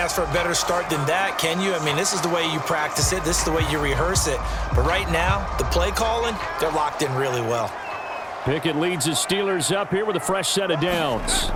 for a better start than that, can you? I mean, this is the way you practice it. This is the way you rehearse it. But right now, the play calling, they're locked in really well. Pickett leads his Steelers up here with a fresh set of downs.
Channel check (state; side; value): identical; both; correlation 1.00